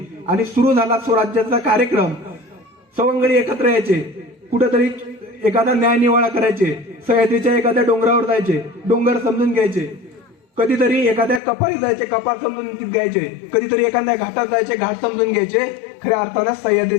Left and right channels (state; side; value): drops out; right; at 11.4 s